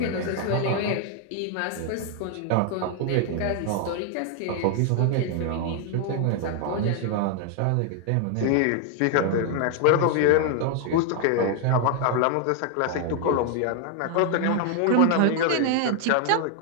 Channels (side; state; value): both; different; correlation 0.00